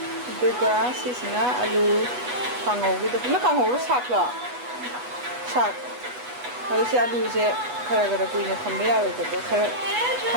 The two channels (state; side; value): late; left; 8.2 ms